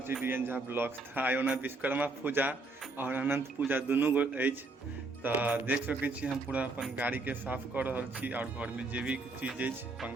छी डीएन झा ब्लॉग्स। आइ ओना विश्वकर्मा पूजा और अनंत पूजा दुनू गो अछि, तऽ देख सकै छी हम पूरा अपन गाड़ीके साफ कऽ रहल छी और घरमे जे भी चीज अछि,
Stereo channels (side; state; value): left; quieter; 3.3 dB